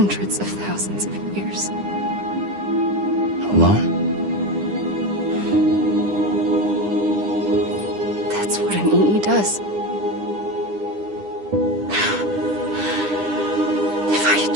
of thousands of years. Alone? That's what an EE does. If I had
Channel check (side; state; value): left; late; 9.9 ms